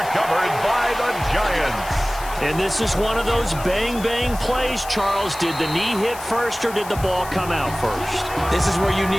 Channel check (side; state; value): left; noise; hiss, 15 dB below the sound